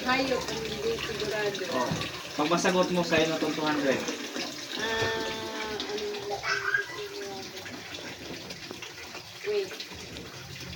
hayop ang hindi sigurado? Oh, pag masagot mo sa'yo na itong 200. Wait.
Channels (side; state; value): both; identical; correlation 1.00